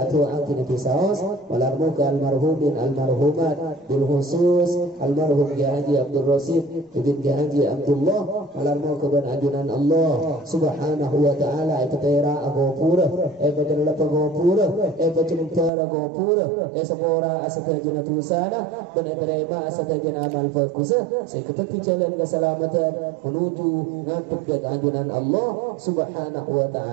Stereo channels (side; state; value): left; drops out; at 15.7 s